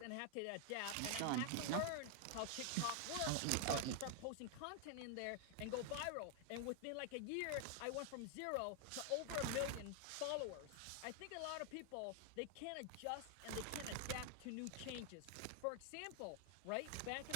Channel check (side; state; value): both; different; correlation 0.00